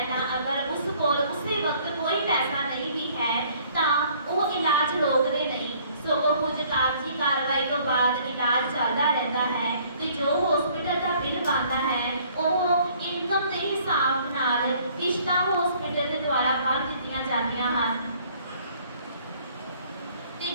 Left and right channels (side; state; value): both; inverted; correlation -0.59